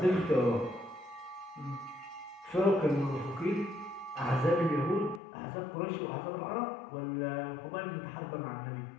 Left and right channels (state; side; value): drops out; right; at 5.2 s